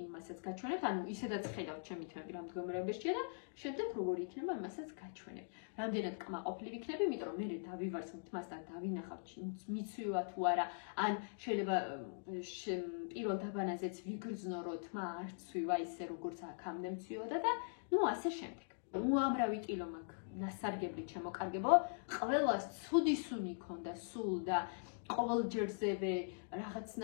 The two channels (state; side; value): silent; right; digital silence